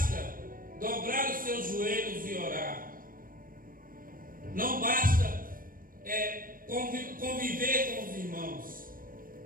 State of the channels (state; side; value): late; left; 0.41 ms